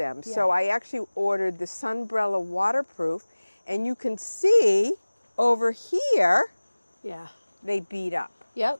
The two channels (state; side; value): inverted; both; correlation -1.00